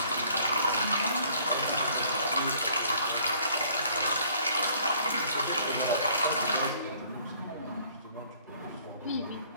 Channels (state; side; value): inverted; both; correlation -0.58